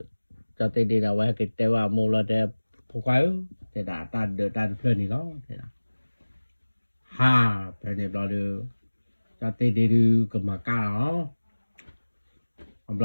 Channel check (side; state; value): both; inverted; correlation -1.00